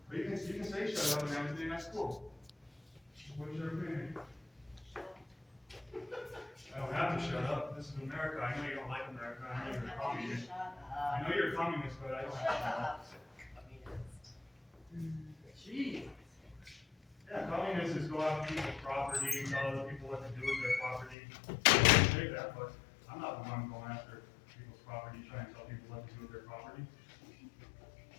but you can say shut up and everything, that's cool. What's your opinion? I don't have to shut up, this is America, I know you don't like America, I know you're a communist. I know you're a communist, but I don't have to shut up. Jeez. Yeah, communists is go out to people's property, tell other people what to do with their property. I say that, but I'm not the one going after people's property, trying to tell people what to do with their property.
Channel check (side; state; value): right; drops out; at 21.2 s